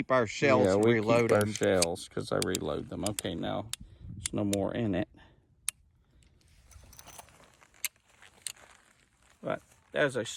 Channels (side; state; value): both; identical; correlation 1.00